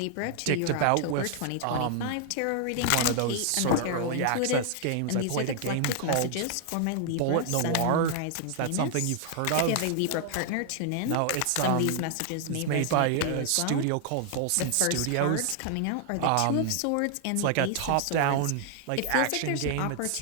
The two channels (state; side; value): different; both; correlation 0.00